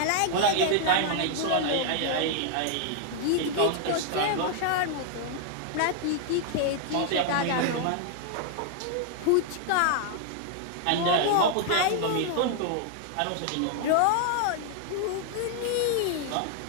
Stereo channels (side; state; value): both; different; correlation 0.00